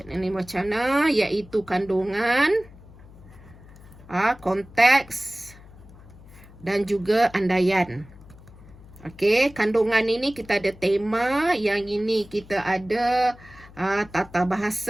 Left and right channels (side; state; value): left; noise; hum, 21 dB below the sound